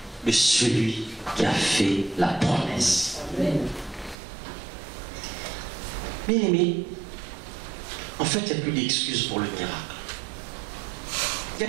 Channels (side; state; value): left; drops out; at 4.2 s